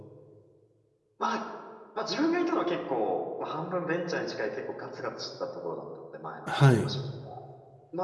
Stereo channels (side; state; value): both; identical; correlation 1.00